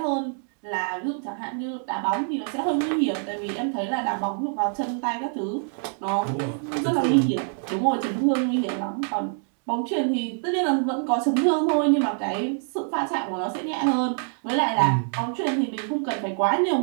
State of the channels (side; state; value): left; silent; 60 dB below the other